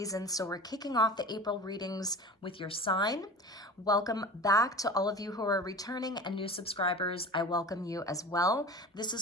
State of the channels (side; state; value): both; normal; correlation 0.36